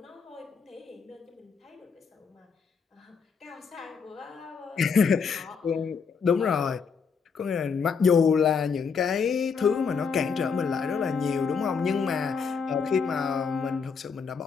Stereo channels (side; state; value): right; quieter; 5.8 dB